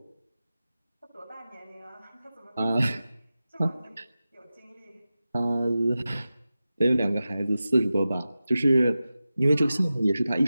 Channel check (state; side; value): inverted; both; correlation -0.94